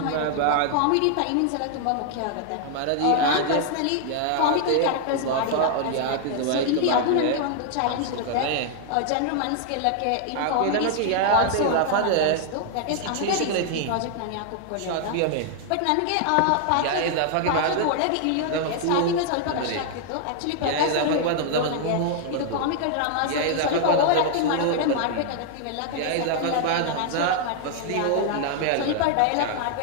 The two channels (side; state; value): both; different; correlation 0.00